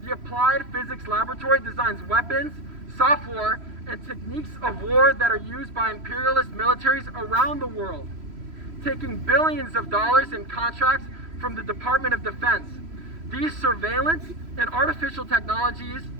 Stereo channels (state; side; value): late; left; 3.0 ms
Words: the Applied Physics Laboratory designs weapons, software, and techniques of war that are used by imperialist militaries around the world, taking billions of dollars in contracts from the Department of Defense. These surveillance and artificial technologies